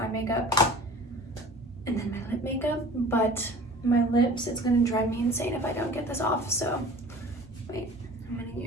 makeup, and then my lip makeup, but my lips, it's gonna drive me insane if I don't get this off. So wait, I'm gonna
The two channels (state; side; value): normal; both; correlation 0.44